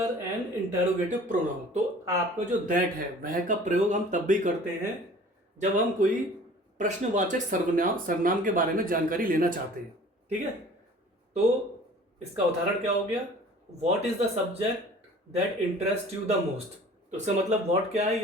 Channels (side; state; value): both; normal; correlation 0.47